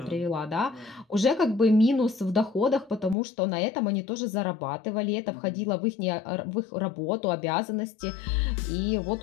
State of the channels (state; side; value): drops out; right; at 3.2 s